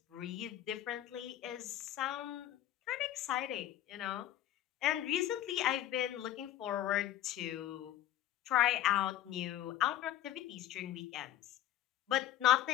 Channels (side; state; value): right; quieter; 12.7 dB